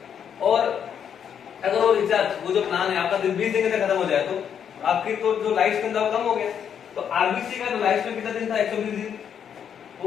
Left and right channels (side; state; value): right; quieter; 8.2 dB